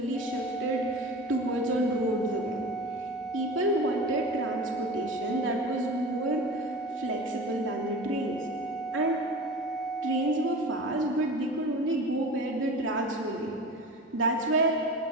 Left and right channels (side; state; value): both; normal; correlation 0.34